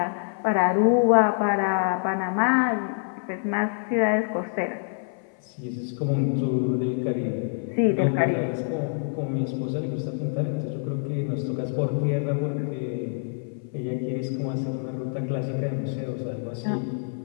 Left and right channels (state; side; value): silent; right; 57 dB below the other